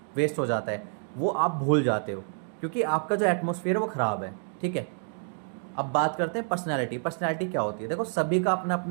वेस्ट हो जाता है, वो आप भूल जाते हो, क्योंकि आपका जो एटमॉस्फेयर है वो ख़राब है। ठीक है, अब बात करते हैं पर्सनैलिटी। पर्सनैलिटी क्या होती है? देखो, सभी का अपना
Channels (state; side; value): silent; left; 59 dB below the other